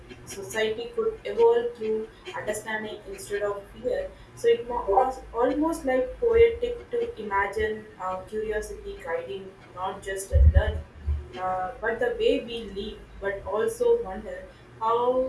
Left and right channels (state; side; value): identical; both; correlation 1.00